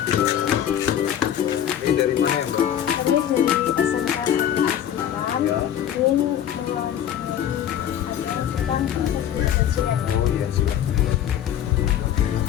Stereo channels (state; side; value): quieter; right; 10.3 dB